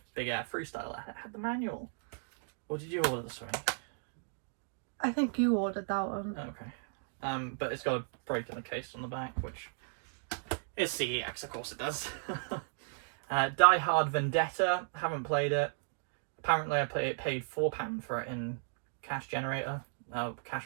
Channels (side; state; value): left; silent; digital silence